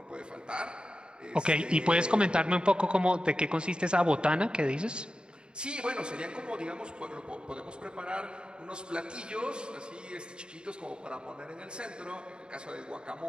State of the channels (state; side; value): late; left; 0.050 ms